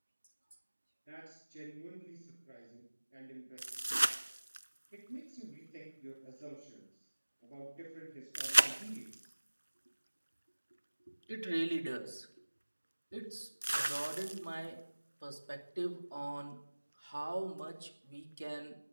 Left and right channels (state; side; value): inverted; both; correlation -1.00